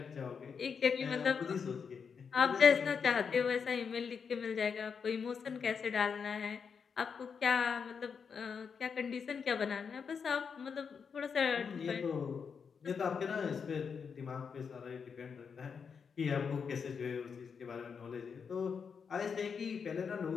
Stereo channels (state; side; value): quieter; right; 6.2 dB